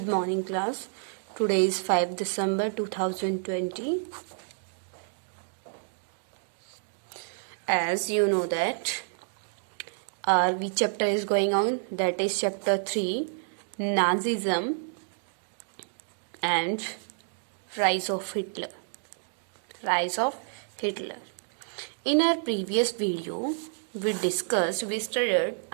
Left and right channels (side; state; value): left; silent; digital silence